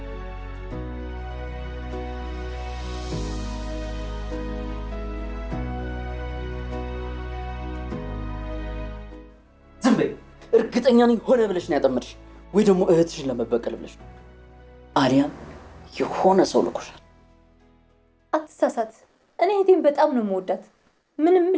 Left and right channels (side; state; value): both; identical; correlation 1.00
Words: ዝም በይ። እርግጠኛ ነኝ ሆነ ብለሽ ነው ያጠመድሽ፣ ወይ ደግሞ እህትሽን ለመበቀል ብለሽ ነው። አሊያም የሆነ ሰው ልኮሻል። አትሳሳት። እኔ እህቴን በጣም ነው የምወዳት። ምንም